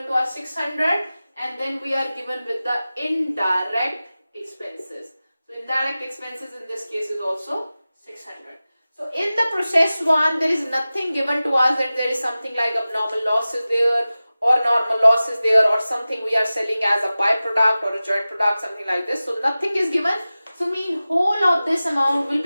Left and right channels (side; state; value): both; inverted; correlation -0.96